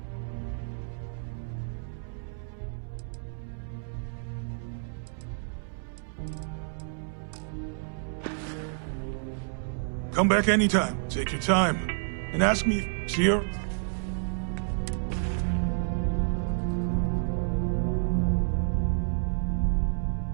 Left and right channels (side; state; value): left; silent; 58 dB below the other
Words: Come back anytime. Take your time. And ask me, see her?